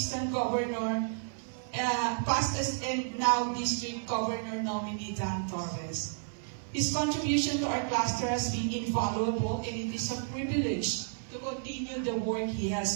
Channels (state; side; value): silent; left; 57 dB below the other